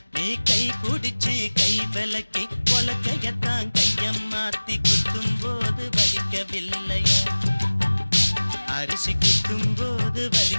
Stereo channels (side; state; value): both; inverted; correlation -1.00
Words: நீ கை புடிச்சு கை விலக்கி உலக்கையத்தான் கையம் மாத்தி குத்தும் போது வலிக்கவில்லையா? அரிசி குத்தும் போது